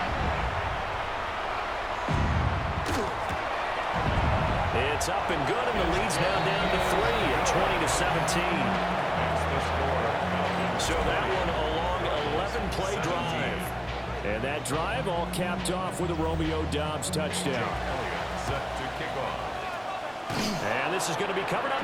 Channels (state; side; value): identical; both; correlation 1.00